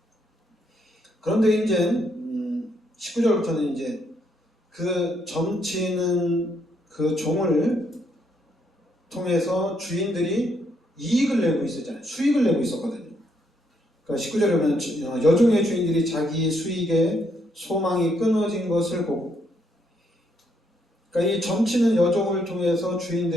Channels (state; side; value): normal; both; correlation 0.74